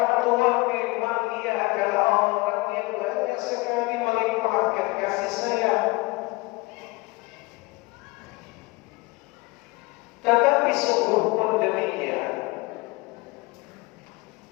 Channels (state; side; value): quieter; right; 24.3 dB